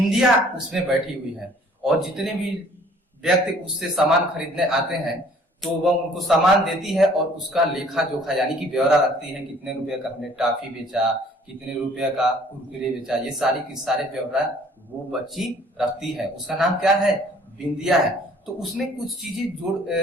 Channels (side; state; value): both; normal; correlation 0.56